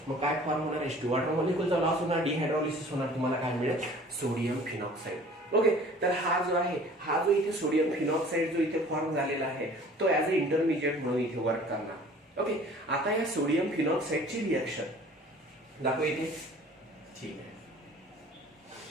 मग काय फॉर्म होणार, H2. वॉटर मॉलिक्यूलचा लॉस होणार, डिहायड्रॉलिसिस होणार, तुम्हाला काय मिळेल, सोडियम फिनॉक्साइड. ओके, तर हा जो आहे, हा जो इथे सोडियम फिनॉक्साइड जो इथे फॉर्म झालेला आहे, तो ऍज अ इंटरमिजिएट म्हणून इथे वर्क करणार. ओके, आता या सोडियम फिनॉक्साइडची रिएक्शन दाखव इथे. ठीक आहे,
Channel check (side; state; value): both; normal; correlation 0.49